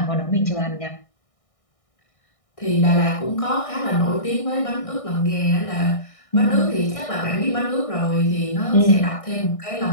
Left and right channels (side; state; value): right; late; 1.6 ms